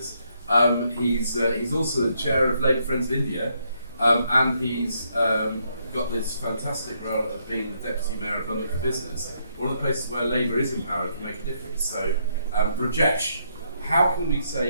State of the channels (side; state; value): both; inverted; correlation -0.75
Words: He's also the chair of Labour Friends of India, and he's got this fantastic role of being the Deputy Mayor of London for Business, one of the places where Labour is empowered to make a difference. So, Rajesh, how can we